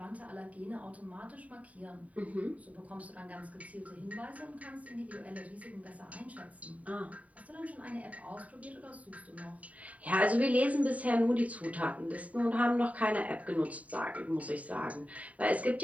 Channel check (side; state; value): left; late; 0.069 ms